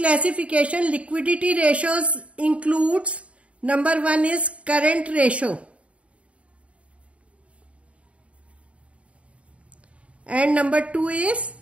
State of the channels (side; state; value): left; late; 0.063 ms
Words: liquidity ratios includes, number 1 is current ratio, and number 2 is